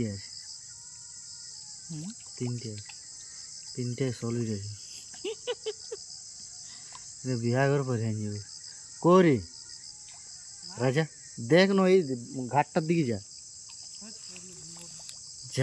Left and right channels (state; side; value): identical; both; correlation 1.00